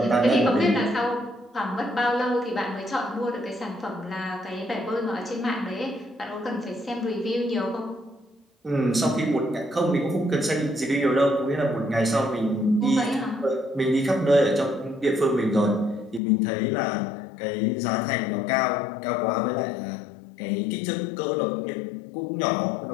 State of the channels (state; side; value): drops out; right; at 16.2 s